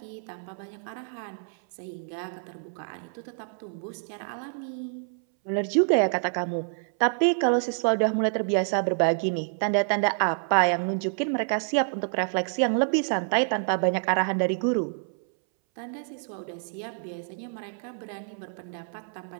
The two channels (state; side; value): silent; left; 60 dB below the other